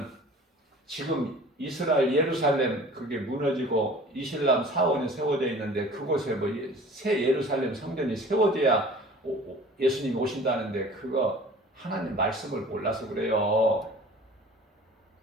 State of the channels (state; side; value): normal; both; correlation 0.45